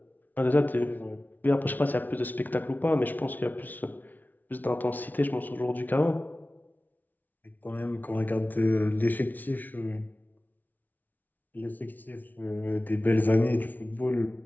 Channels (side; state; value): right; late; 0.082 ms